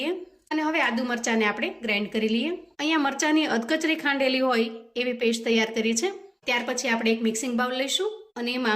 અને હવે આદુ મરચાંને આપણે ગ્રાઇન્ડ કરી લઈએ. અહીંયા મરચાંની અધકચરી ખાંડેલી હોય એવી પેસ્ટ તૈયાર કરી છે. ત્યાર પછી આપણે એક મિક્સિંગ બાઉલ લઈશું અને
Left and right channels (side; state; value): both; identical; correlation 1.00